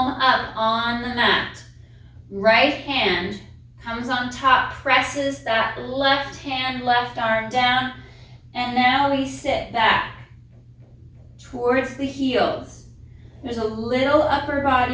up on the mat. Right hand comes on top, presses that left hand, left arm down, and now we sit back towards the heels. There's a little upper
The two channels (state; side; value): identical; both; correlation 1.00